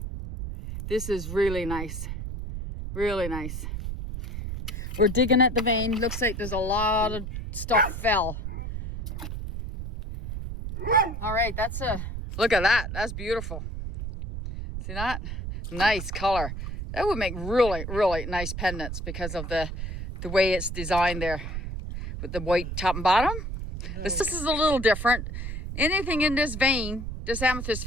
This is really nice. Really nice. We're digging at the vein. Looks like there's a lot of stuff fell. All right, look at that. That's beautiful. See that? Nice color. That would make really, really nice pendants because of the way it's designed there with the white top and bottom. This is a little different. Anything in this vein, this amethyst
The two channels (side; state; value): right; noise; rumble, 6 dB below the sound